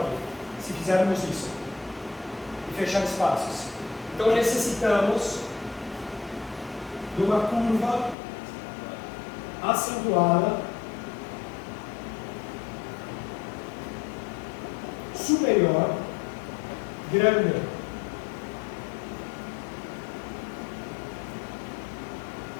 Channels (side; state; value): right; drops out; at 8.2 s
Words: se fizermos isso e fechar espaços. Então necessitamos de uma curva acentuada superior grande.